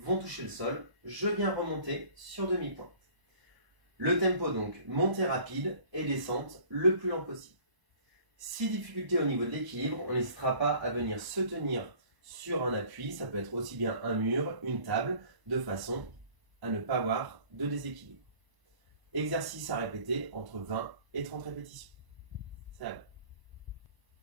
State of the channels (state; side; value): late; left; 1.0 ms